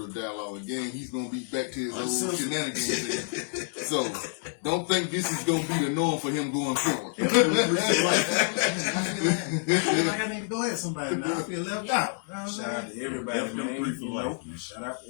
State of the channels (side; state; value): right; silent; 59 dB below the other